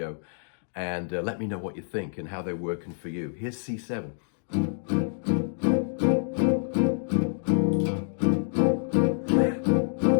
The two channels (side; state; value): right; silent; digital silence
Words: and let me know what you think and how they're working for you. Here's C7.